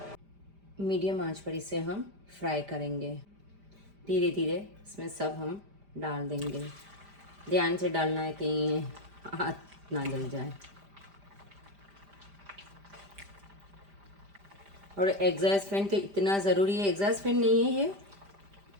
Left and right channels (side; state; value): left; late; 5.0 ms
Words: मीडियम आंच पर इसे हम फ्राई करेंगे। धीरे धीरे इसमें सब हम डाल देंगे। ध्यान से डालना है कहीं हाथ ना जल जाए। और एग्जॉस्ट फैन तो इतना ज़रूरी है। एग्जॉस्ट फैन नहीं है ये,